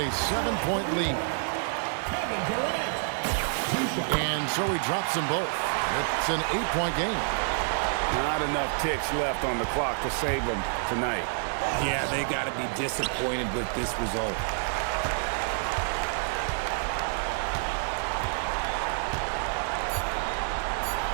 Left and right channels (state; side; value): silent; left; digital silence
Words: 7-point lead. And so he drops them both. It's an 8-point game. Not enough ticks left on the clock to save them tonight. Yeah, they got to be disappointed with this result.